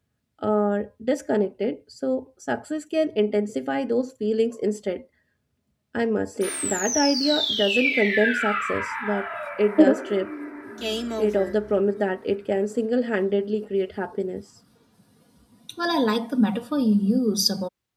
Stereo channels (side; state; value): both; identical; correlation 1.00